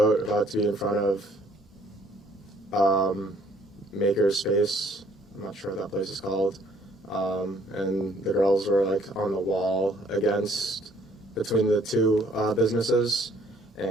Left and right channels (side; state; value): both; normal; correlation 0.62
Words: about to be in front of Maker's Space. I'm not sure what that place is called. And the girls were like on the wall between the two businesses,